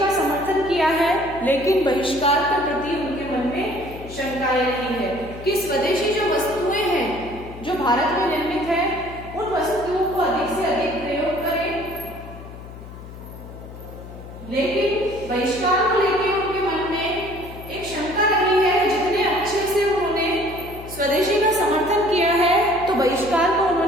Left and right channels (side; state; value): left; noise; hum, 14 dB below the sound